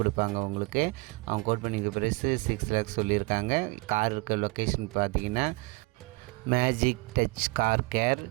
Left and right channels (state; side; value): quieter; left; 25.0 dB